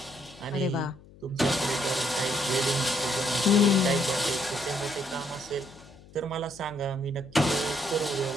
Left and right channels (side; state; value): left; noise; hum, 22 dB below the sound